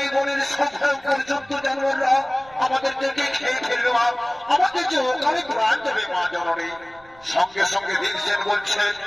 এই বনের সব পর্যন্ত জানোয়াররা আমাদেরকে খেয়ে ফেলবে মা, আমাদের যে ওখানে প্রাণ দেবে মা জননী। সঙ্গে সঙ্গে ভীমসেন বলছেন,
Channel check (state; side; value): noise; right; rumble, 26 dB below the sound